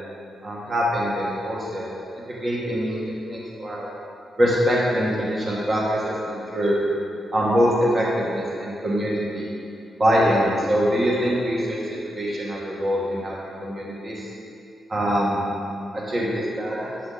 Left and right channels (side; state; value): both; normal; correlation 0.84